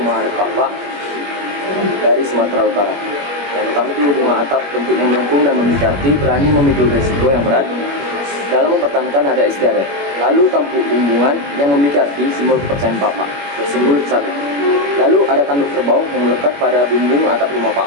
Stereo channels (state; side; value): late; left; 21 ms